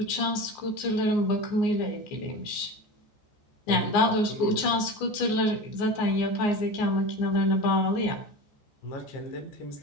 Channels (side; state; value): right; late; 14 ms